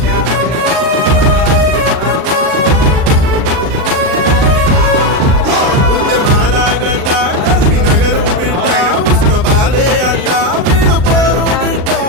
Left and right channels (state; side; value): late; left; 39 ms